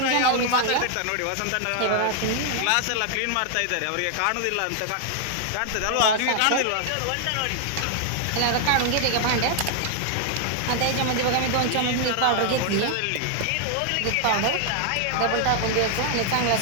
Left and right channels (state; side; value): different; both; correlation 0.00